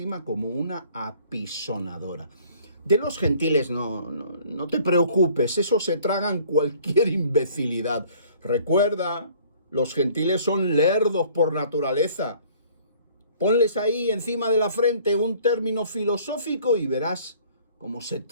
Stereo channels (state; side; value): inverted; both; correlation -0.54